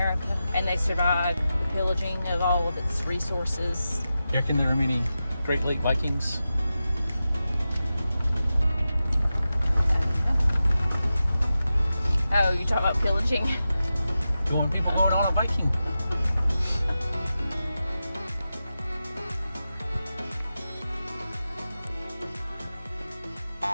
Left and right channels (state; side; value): inverted; both; correlation -0.92